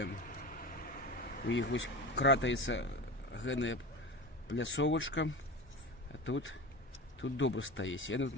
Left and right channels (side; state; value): both; normal; correlation 0.28